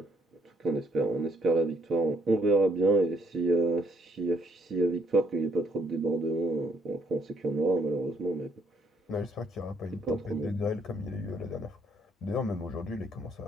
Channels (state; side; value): normal; both; correlation 0.69